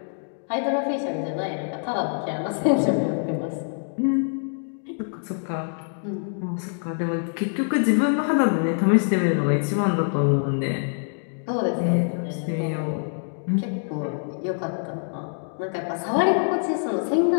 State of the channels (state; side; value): silent; right; digital silence